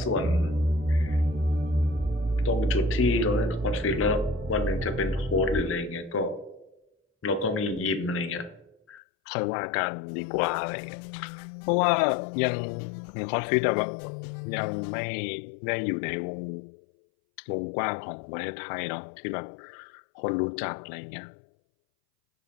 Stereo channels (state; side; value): drops out; right; at 9.0 s